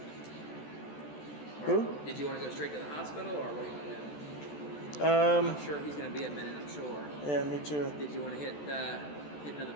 Who? Did you want to go straight to the hospital, or what do you want to do? I'm sure he's gonna be a minute, I'm sure. Yeah, me too. Did you want to hit another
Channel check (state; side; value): late; right; 14 ms